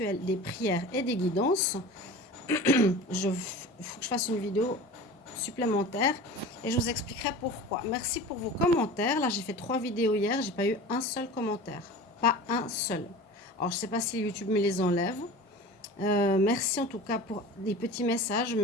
des prières et des guidances. Il faut que je fasse une vidéo supplémentaire et je vous expliquerai pourquoi. Merci pour vos commentaires. Là, j'ai fait 3 vidéos hier, j'ai pas eu un seul commentaire. Pas un seul. Alors, je sais pas si YouTube me les enlève. Merci en tout cas pour des petits messages.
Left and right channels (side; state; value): both; normal; correlation 0.36